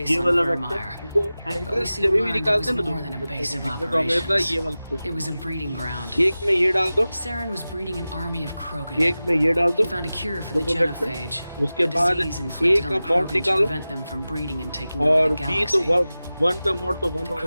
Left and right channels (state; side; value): inverted; both; correlation -0.96